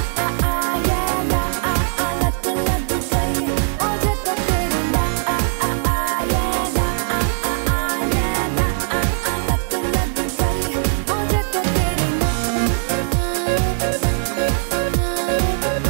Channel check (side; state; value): left; silent; 66 dB below the other